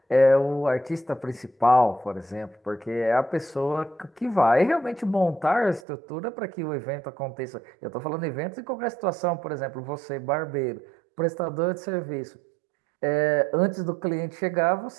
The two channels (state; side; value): drops out; left; at 5.8 s